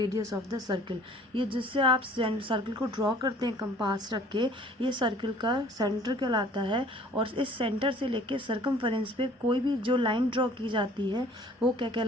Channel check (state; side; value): normal; both; correlation 0.52